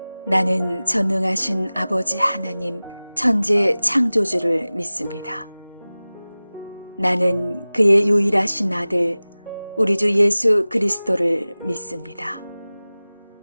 나는 전능하신 아버지 하나님 천재 창조주를 믿습니다. 나는 그의 유일하신 아들 우리 주 예수 그리스도를 믿습니다.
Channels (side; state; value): both; inverted; correlation -0.98